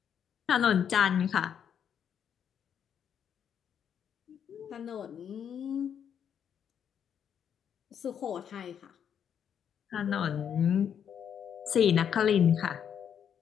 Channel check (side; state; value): right; quieter; 8.4 dB